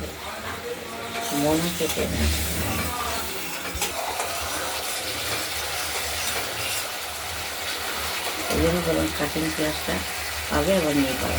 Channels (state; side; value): identical; both; correlation 1.00